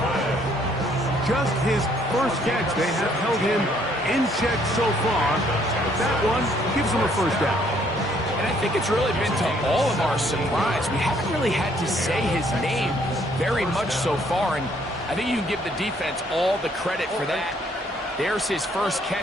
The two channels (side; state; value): both; normal; correlation 0.65